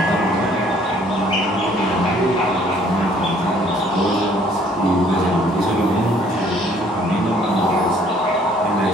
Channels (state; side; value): normal; both; correlation 0.60